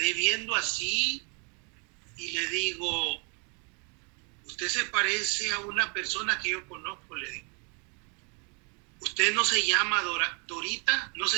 viendo así y le digo, usted se parece a una persona que yo conozco, le digo. ¿Usted no se llama Dorita? ¿No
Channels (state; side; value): quieter; left; 35.2 dB